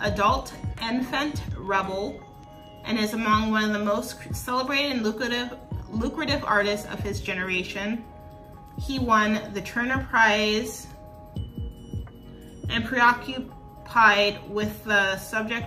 adult infant rebel and is among one of the most celebrated and lucrative artists of his generation. He won the Turner Prize and preoccupied with the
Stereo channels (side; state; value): both; identical; correlation 1.00